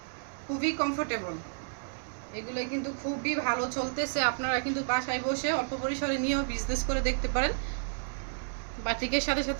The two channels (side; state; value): left; silent; digital silence